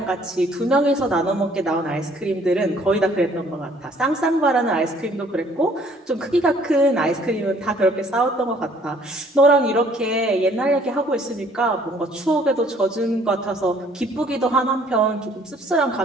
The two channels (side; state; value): both; normal; correlation 0.59